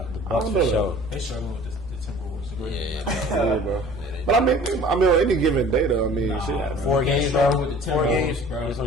The Bucks for sure. They struggle with the Timberwolves. The Grizzlies. Yeah, bro. But I mean, on any given day, though, I mean, shit. 4 games, struggle bro. with the 4 Timberwolves, games, bro. It's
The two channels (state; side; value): normal; both; correlation 0.47